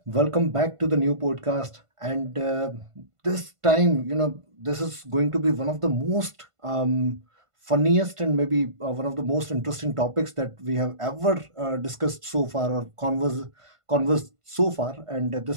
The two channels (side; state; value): left; late; 1.5 ms